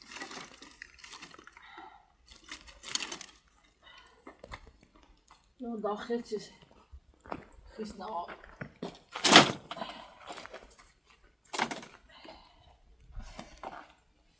اون داخل چیز خیس نواب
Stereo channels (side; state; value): both; identical; correlation 1.00